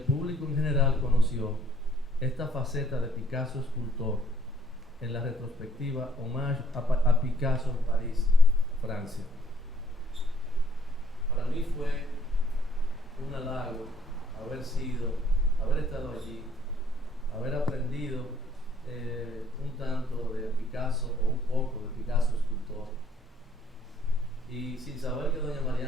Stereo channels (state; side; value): normal; both; correlation 0.63